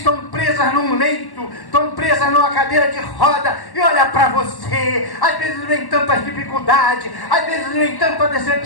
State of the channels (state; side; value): late; right; 1.1 ms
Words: presas num leito, estão presas numa cadeira de roda. E olha para você, às vezes vem tanta dificuldade, às vezes vem tanta